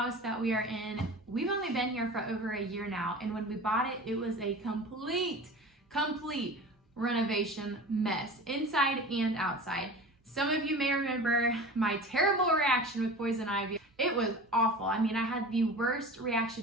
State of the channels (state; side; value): normal; both; correlation 0.36